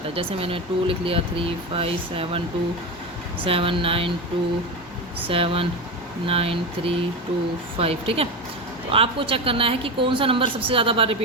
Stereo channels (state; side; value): normal; both; correlation 0.19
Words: है। जैसे मैंने 2 लिख लिया, 3 5 7 2 7 9 2 7 9 3 2 5। ठीक है तो आपको चेक करना है कि कौन सा नंबर सबसे ज़्यादा बार